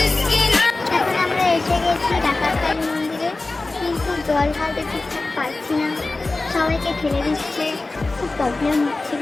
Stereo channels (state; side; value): quieter; right; 3.3 dB